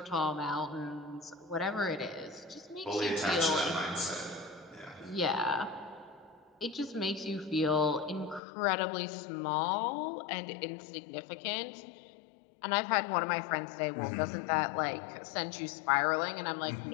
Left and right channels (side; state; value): right; drops out; at 8.4 s